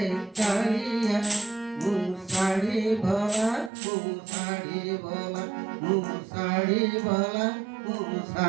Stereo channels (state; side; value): drops out; left; at 3.7 s